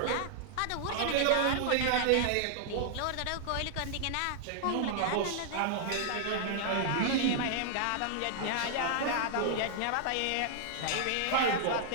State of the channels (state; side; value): different; both; correlation -0.01